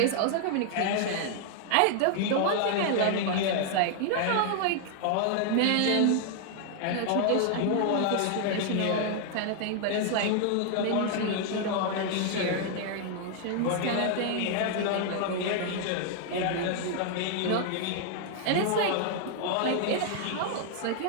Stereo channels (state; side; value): different; both; correlation 0.00